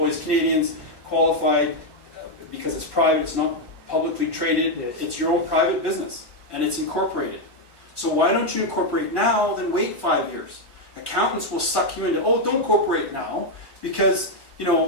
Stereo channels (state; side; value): late; right; 1.1 ms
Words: Canadians, qualified because it's private, it's not publicly traded, Yes. It's your own private business and it's incorporated. So why don't you incorporate now, then wait 5 years? Accountants will suck you into, oh, don't incorporate now because,